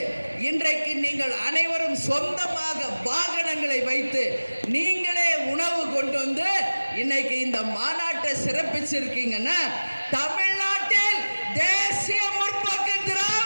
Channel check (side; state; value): both; inverted; correlation -1.00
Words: இன்றைக்கு நீங்கள் அனைவரும் சொந்தமாக வாகனங்களை வைத்து நீங்களே உணவு கொண்டு வந்து இன்னைக்கு இந்த மாநாட்டை சிறப்பிச்சிருக்கீங்கன்னா, தமிழ்நாட்டில் தேசிய முற்போக்கு